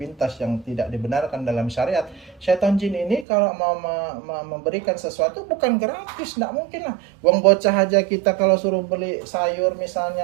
yang tidak dibenarkan dalam syariat, syaitan jin ini kalau mau memberikan sesuatu bukan gratis, tidak mungkin lah. Uang bocah aja kita kalau suruh beli sayur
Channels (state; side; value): drops out; left; at 3.2 s